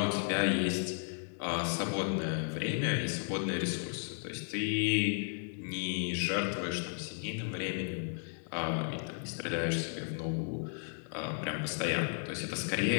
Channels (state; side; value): silent; right; 55 dB below the other